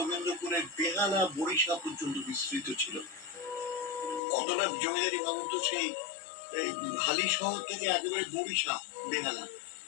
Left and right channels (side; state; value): right; drops out; at 4.2 s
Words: বেহালা বরিশা পর্যন্ত বিস্তৃত ছিল। কতটা জমিদারি ভাবুন তো, সেই হালি শহর থেকে একেবারে বরিশা বেহালা